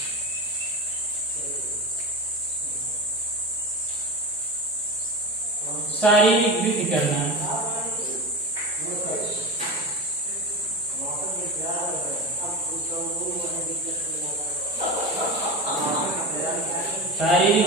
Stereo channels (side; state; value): both; normal; correlation 0.24